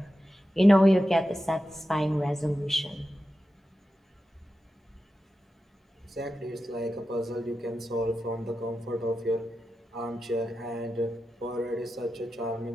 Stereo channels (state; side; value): normal; both; correlation 0.91